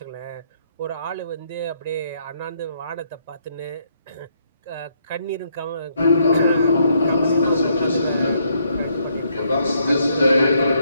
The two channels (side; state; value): both; inverted; correlation -0.72